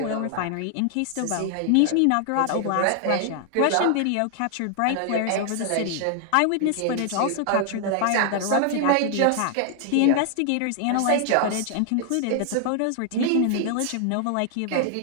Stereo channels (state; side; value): different; both; correlation 0.00